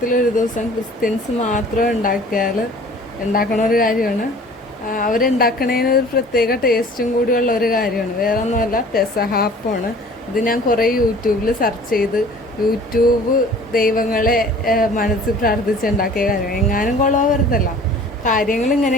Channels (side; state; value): both; normal; correlation 0.48